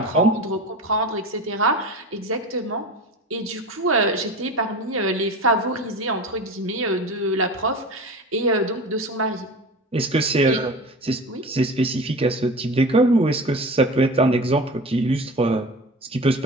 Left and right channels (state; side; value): normal; both; correlation 0.33